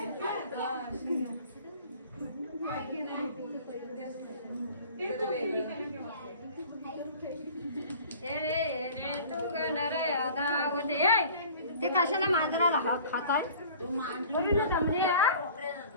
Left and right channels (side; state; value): both; inverted; correlation -0.46